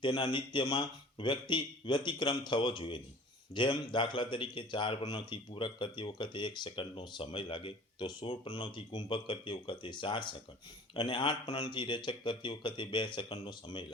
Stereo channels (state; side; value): normal; both; correlation 0.45